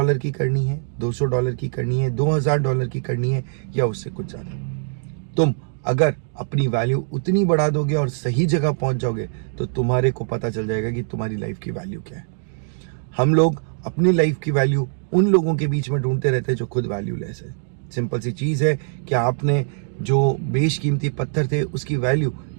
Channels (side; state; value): left; silent; digital silence